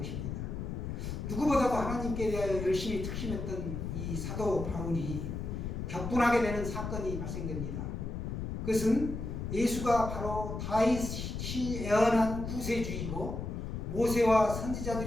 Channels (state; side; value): noise; left; rumble, 5 dB below the sound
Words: 누구보다도 하나님께 대하여 열심히 특심했던 이 사도 바울이 격분하게 되는 사건이 발생됩니다. 그것은 예수가 바로 다윗이 예언한 구세주이고 모세와